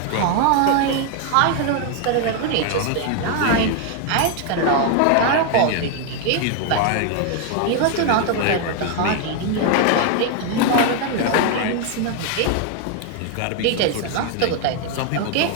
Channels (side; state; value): both; different; correlation 0.00